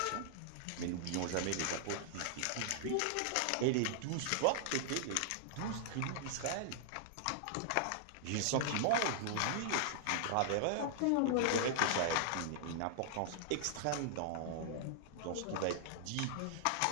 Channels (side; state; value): both; different; correlation -0.01